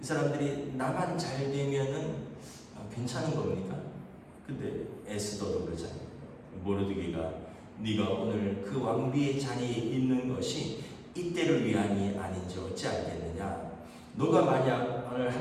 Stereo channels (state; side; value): identical; both; correlation 1.00